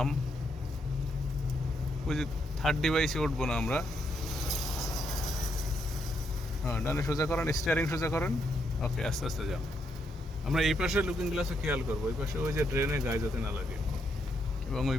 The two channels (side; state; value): both; normal; correlation 0.77